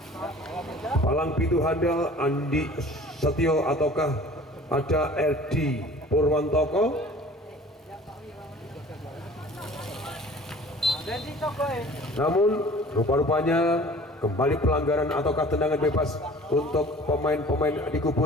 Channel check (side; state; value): both; normal; correlation 0.46